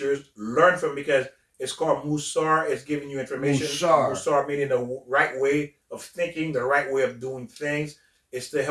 Learn from, because it's called Musar. It's giving you information. Musar meaning the right way of thinking, the right way of doing things. It's to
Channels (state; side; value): identical; both; correlation 1.00